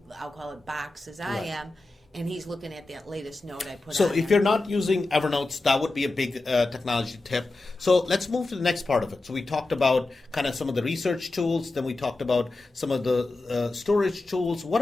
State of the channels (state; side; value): quieter; right; 3.2 dB